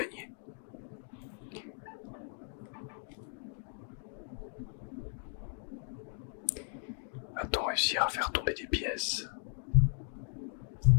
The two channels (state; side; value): silent; right; 54 dB below the other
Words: Va-t-on réussir à faire tomber des pièces?